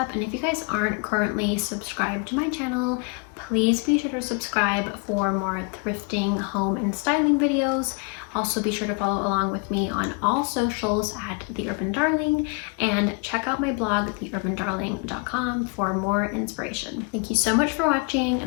and if you guys aren't currently subscribed to my channel, please be sure to subscribe for more thrifting, home, and styling videos. Also be sure to follow along with me on all socials at The Urban Darling, and check out my blog, theurbandarling.com, for more inspiration. Thank you so much for watching,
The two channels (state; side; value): quieter; right; 34.2 dB